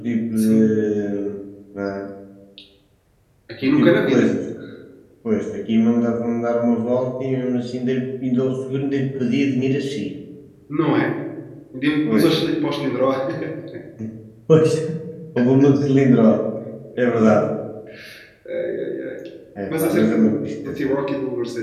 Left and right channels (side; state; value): both; identical; correlation 1.00